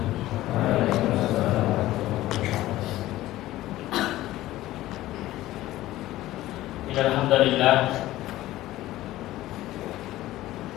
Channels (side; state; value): right; quieter; 15.8 dB